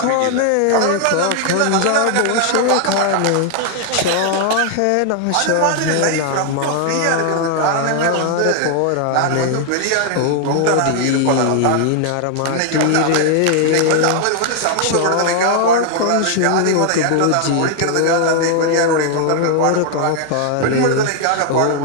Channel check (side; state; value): both; different; correlation 0.00